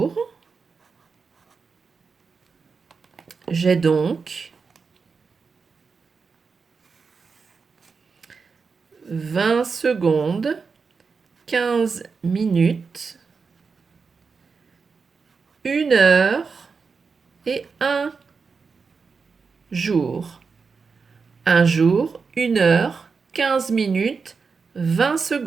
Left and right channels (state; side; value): quieter; left; 5.1 dB